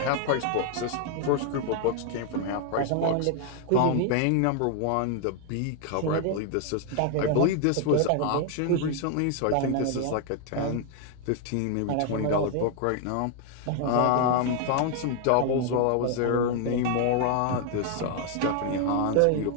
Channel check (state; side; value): different; both; correlation 0.00